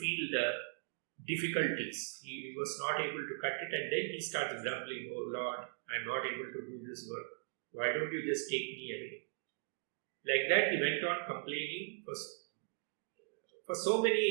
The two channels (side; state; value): left; silent; digital silence